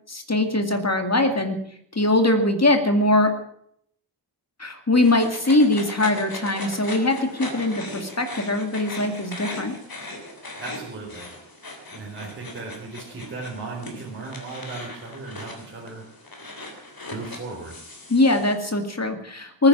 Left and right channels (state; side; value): normal; both; correlation 0.05